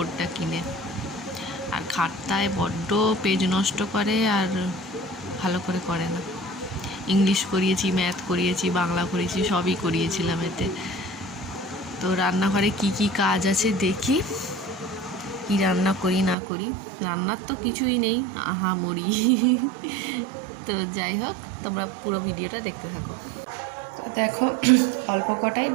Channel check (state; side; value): drops out; left; at 16.4 s